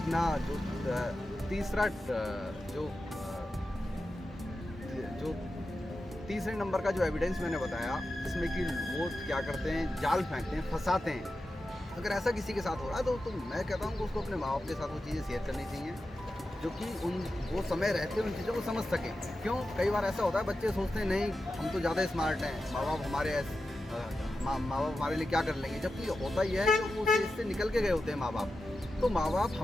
जो तीसरा जो तीसरे नंबर का जो एविडेंस मैंने बताया, जिसमें कि वो क्या करते हैं, जाल फेंकते हैं, फंसाते हैं, अगर ऐसा किसी के साथ हो रहा है तो मैं कहता हूँ कि उसको अपने माँ बाप के साथ वो चीज़ें शेयर करनी चाहिए, जो कि वो समय रहते उन चीज़ों को समझ सकें। क्यों, कई बार ऐसा होता है बच्चे सोचते हैं नहीं हम तो ज़्यादा स्मार्ट हैं, माँ बाप हमारे लिए क्या कर लेंगे, जबकि होता ही है कि वो इससे निकल के गए होते हैं माँ बाप। तो माँ बाप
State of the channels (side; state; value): both; normal; correlation 0.91